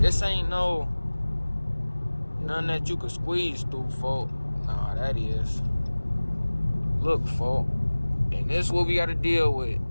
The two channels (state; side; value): inverted; both; correlation -1.00